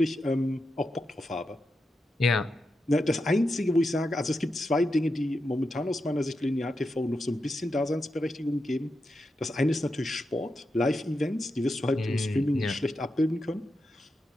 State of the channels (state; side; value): normal; both; correlation 0.87